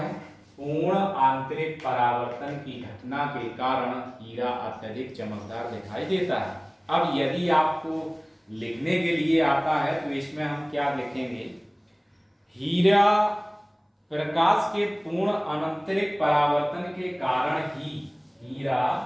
पूर्ण आंतरिक परावर्तन की घटना के कारण हीरा अत्यधिक चमकदार दिखाई देता है। अब यदि आपको लिखने के लिए आता है तो इसमें हम क्या लिखेंगे, हीरा प्रकाश के पूर्ण आंतरिक परावर्तन के कारण ही हीरा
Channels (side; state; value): both; identical; correlation 1.00